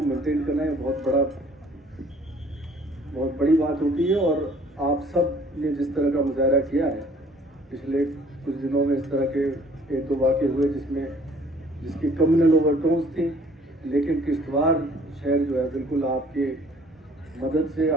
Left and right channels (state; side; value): normal; both; correlation 0.56